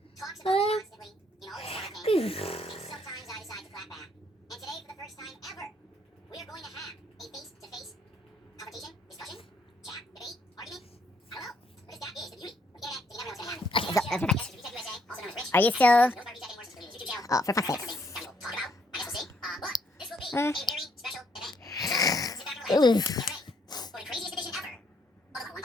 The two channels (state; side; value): normal; both; correlation 0.70